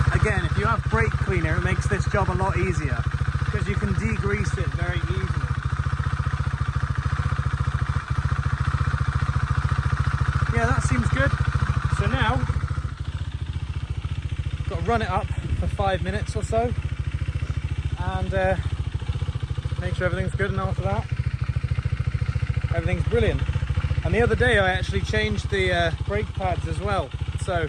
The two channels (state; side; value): identical; both; correlation 1.00